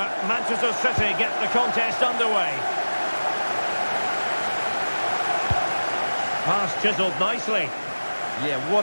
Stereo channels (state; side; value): inverted; both; correlation -1.00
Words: Manchester City get the contest underway. Pass chiselled nicely. Yeah,